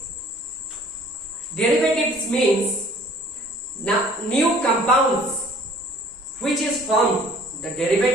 Derivatives means new compounds which is formed. The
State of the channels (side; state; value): both; normal; correlation 0.53